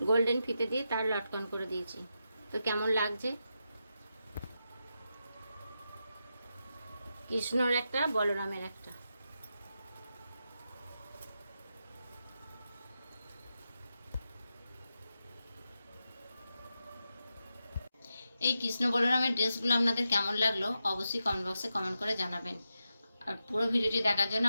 গোল্ডেন ফিতে দিয়ে তার লটকন করে দিয়েছি। তো কেমন লাগছে? কৃষ্ণর একটা, বলরামের একটা। এই কৃষ্ণ বলরামের ড্রেসগুলো আপনাদের কেমন লাগলো অবশ্যই কমেন্ট বক্সে কমেন্ট করে জানাবেন। আর পুরো ভিডিওটি দেখার জন্য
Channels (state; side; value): inverted; both; correlation -0.88